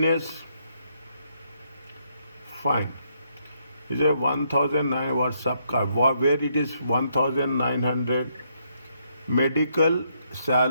fine. Is a 1,009 was subcar. Where it is 1,900. Medical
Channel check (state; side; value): inverted; both; correlation -0.74